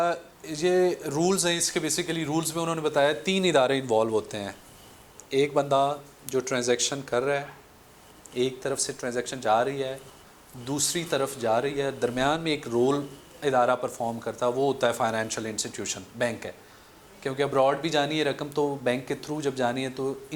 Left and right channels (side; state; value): both; identical; correlation 1.00